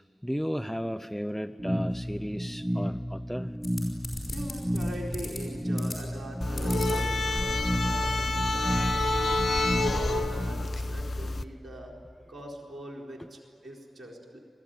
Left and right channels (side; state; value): both; normal; correlation 0.93